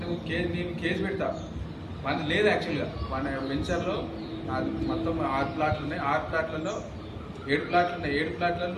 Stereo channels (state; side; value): identical; both; correlation 1.00